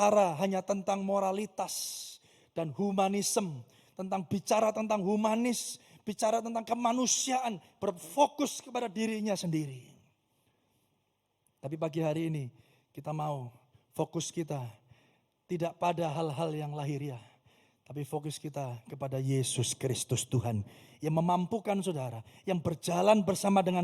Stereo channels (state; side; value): identical; both; correlation 1.00